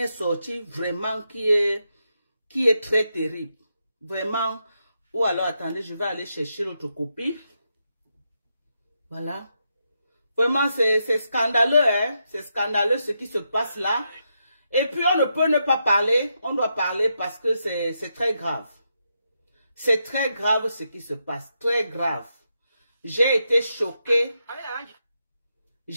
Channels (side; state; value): both; inverted; correlation -0.83